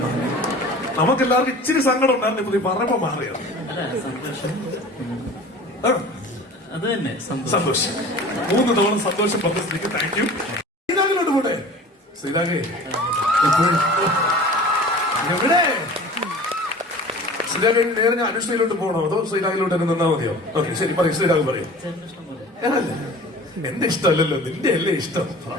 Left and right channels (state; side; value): normal; both; correlation 0.41